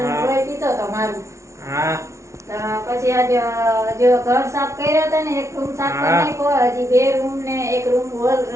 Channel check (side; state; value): left; late; 0.14 ms